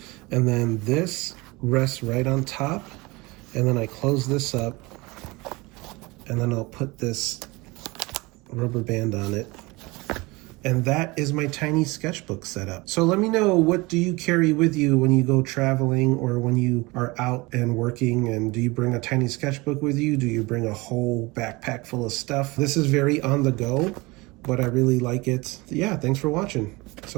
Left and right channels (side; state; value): left; quieter; 23.8 dB